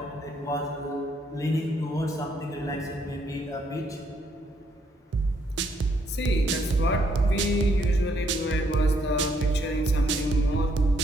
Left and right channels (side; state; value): both; normal; correlation 0.71